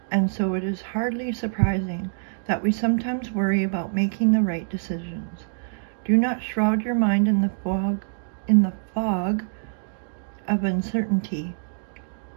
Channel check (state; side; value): silent; left; digital silence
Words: and so it is hardly surprising that we sometimes worry about making the right decisions. Do not shroud your mind in the fog of uncertainty.